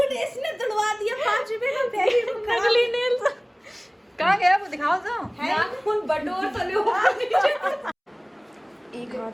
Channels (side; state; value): both; identical; correlation 1.00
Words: इसने तोड़वा दिया 5 रुपए का नकली नेल्स कहाँ गया वो दिखाओ तो नाखून बटोर तो लो एक हाथ